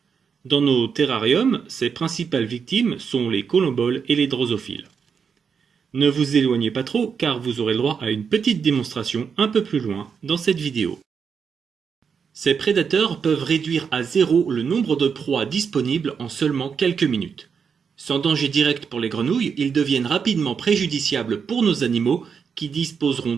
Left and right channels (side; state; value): left; quieter; 6.4 dB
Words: Dans nos terrariums, ses principales victimes sont les colomboles et les drosophiles. Ne vous éloignez pas trop car vous aurez le droit à une petite démonstration un peu plus loin dans cette vidéo. Ces prédateurs peuvent réduire à zéro le nombre de proies disponibles en seulement quelques minutes. Sans danger direct pour les grenouilles, ils deviennent rapidement préjudiciables pour nos animaux qui disposeront